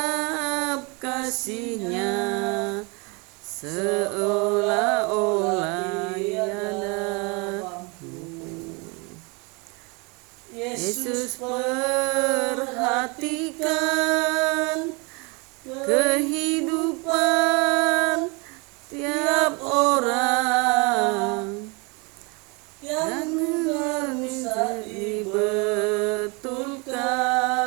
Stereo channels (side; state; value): left; quieter; 30.0 dB